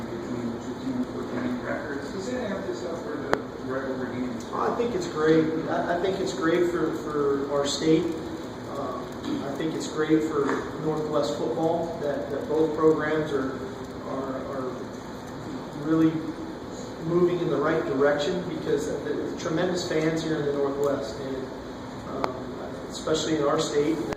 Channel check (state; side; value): identical; both; correlation 1.00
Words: between the two teams with winning records. Does it amp this up for the regular games? I think it's great. I think it's great for our state. I think it's great for Northwest football that both programs are really moving in the right direction, because the tremendous fans here in the Northwest, and especially in our state. And